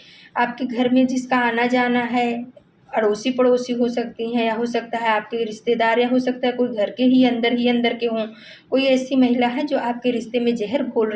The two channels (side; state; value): both; identical; correlation 1.00